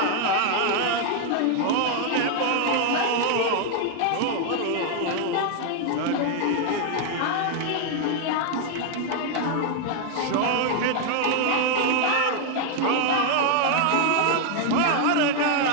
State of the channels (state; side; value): different; both; correlation 0.00